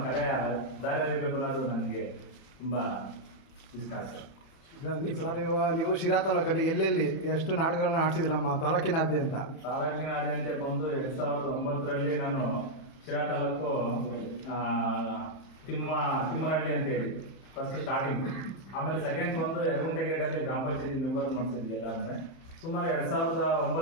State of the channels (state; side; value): late; right; 30 ms